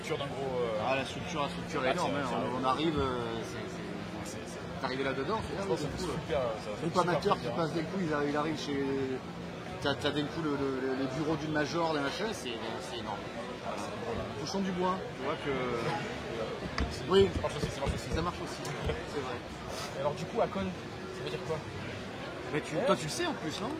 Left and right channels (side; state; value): both; identical; correlation 1.00